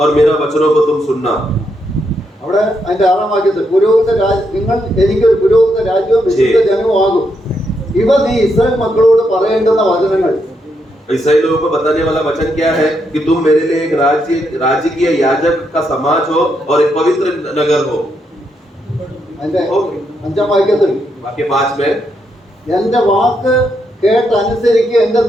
मेरा वचनों को तुम सुनना. അവിടെ അതിന്റെ 6-ാം വാക്യത്തിൽ നിങ്ങൾ എനിക്കൊരു പുരോഹിത രാജ്യവും വിശുദ്ധ ജനവും ആകും. ഇവ നീ ഇസ്രായേൽ മക്കളോട് പറയേണ്ടുന്ന വചനങ്ങൾ. इस्राएल लोगों को बताने वाला वचन क्या है? कि तुम मेरे लिए एक राजकीय याजक का समाज हो और एक पवित्र नगर हो. അതിന്റെ 5-ാം വാക്യത്തിൽ वाक्य 5 में എന്റെ വാക്ക് കേട്ടനുസരിക്കുകയും എന്റെ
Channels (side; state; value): both; normal; correlation 0.79